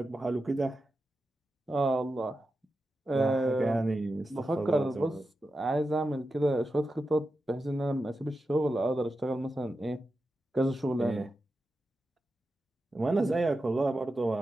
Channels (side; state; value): both; normal; correlation 0.90